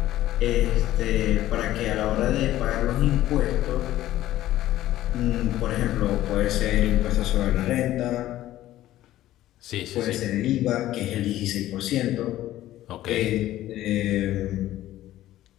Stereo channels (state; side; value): quieter; right; 14.3 dB